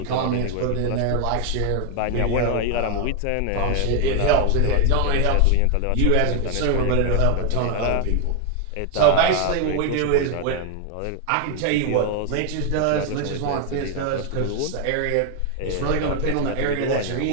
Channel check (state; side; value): different; both; correlation 0.01